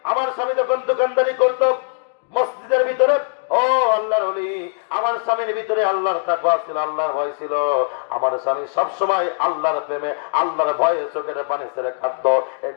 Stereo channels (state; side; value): silent; right; digital silence